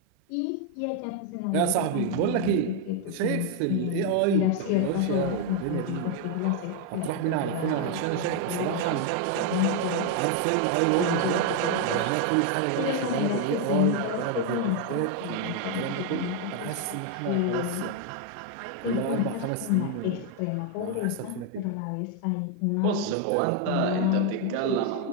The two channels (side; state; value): both; different; correlation 0.01